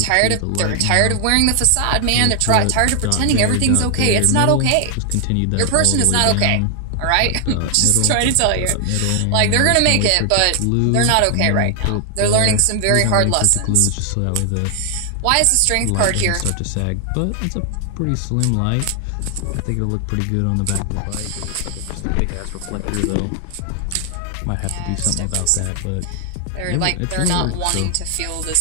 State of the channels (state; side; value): different; both; correlation 0.00